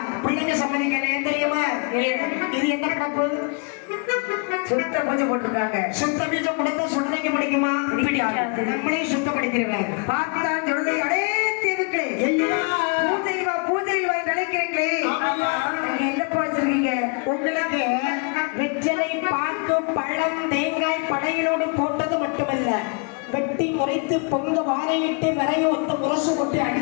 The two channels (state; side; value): quieter; right; 35.6 dB